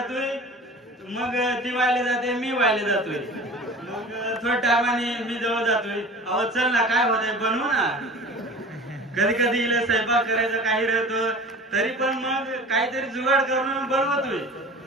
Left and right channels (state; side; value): normal; both; correlation 0.39